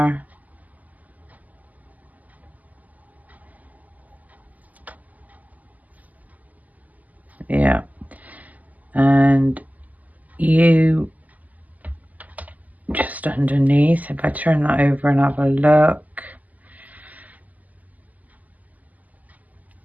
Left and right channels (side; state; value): left; late; 0.078 ms